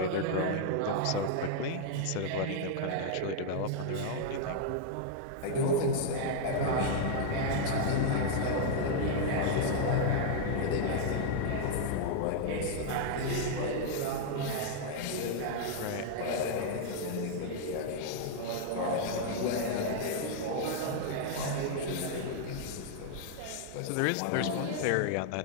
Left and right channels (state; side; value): different; both; correlation -0.01